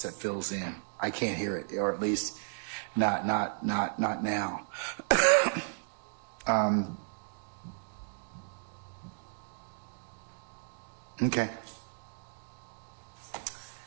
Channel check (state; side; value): silent; left; digital silence